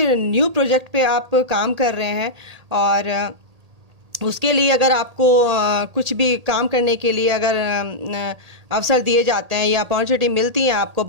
न्यू प्रोजेक्ट पे आप काम कर रहे हैं और उसके लिए अगर आपको कुछ भी काम करने के लिए अगर अवसर दिए जाते हैं या अपॉर्चुनिटी मिलती है आपको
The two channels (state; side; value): late; left; 1.8 ms